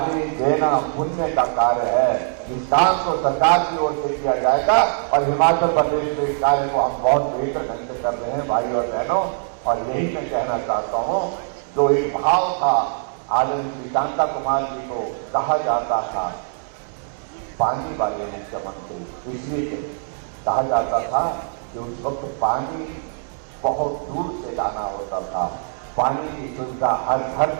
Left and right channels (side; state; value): left; silent; digital silence